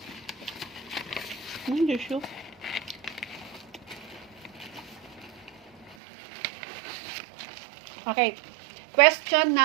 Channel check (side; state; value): left; drops out; at 6.0 s